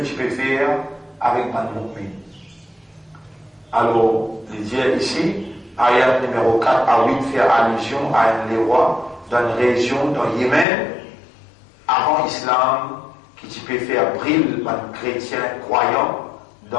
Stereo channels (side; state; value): right; drops out; at 10.7 s